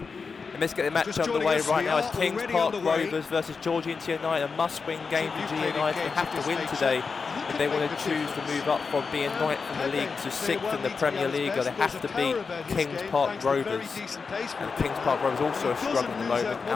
And let's get the match underway right now. It's Kings Park Rovers versus Georgehigton United. A must-win game for G United. They have to win today if they want to choose to move up from being ninth in the league to sixth in the PremierLiga. They have to beat Kings Park Rovers. And Kings Park Rovers also are struggling at the moment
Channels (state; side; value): quieter; right; 5.0 dB